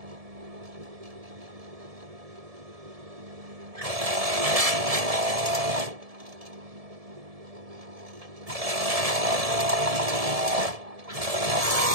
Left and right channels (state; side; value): late; left; 1.7 ms